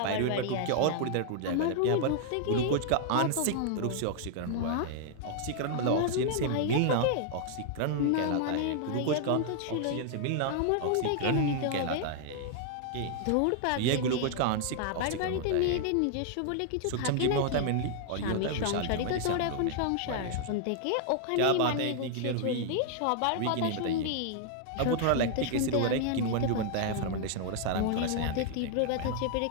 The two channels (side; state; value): both; different; correlation -0.01